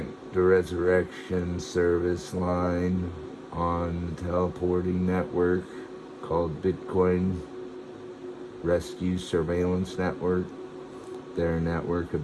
the Resurrection Service line on the teleporting network called Bitcoin Rescue Surveillance Network. They're a network of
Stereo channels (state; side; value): identical; both; correlation 1.00